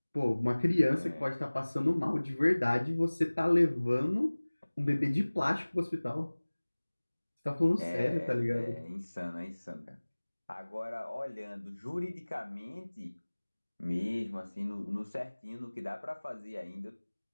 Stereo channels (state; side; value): inverted; both; correlation -1.00